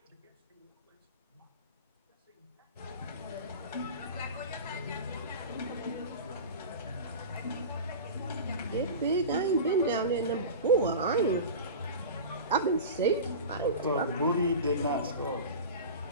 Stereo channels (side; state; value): both; inverted; correlation -0.30